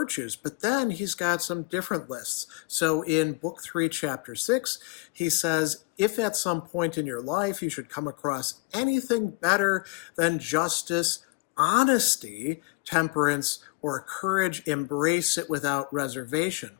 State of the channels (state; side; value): quieter; right; 28.2 dB